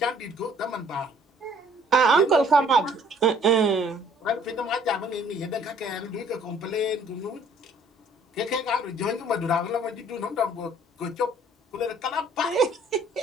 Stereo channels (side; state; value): both; normal; correlation 0.58